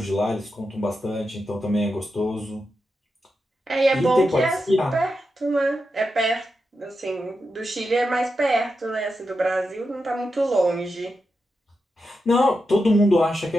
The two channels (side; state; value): both; normal; correlation 0.88